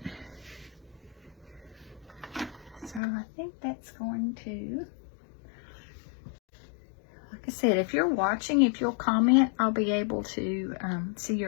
So I think that's going to, like I said, if you're watching, if you'll comment, I'll be able to see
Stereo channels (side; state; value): right; drops out; at 3.0 s